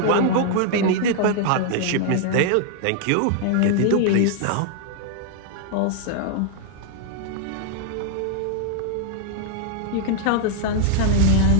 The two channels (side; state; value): both; different; correlation 0.00